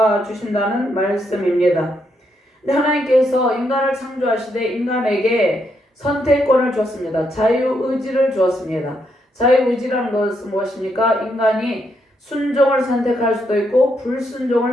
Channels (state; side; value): normal; both; correlation 0.78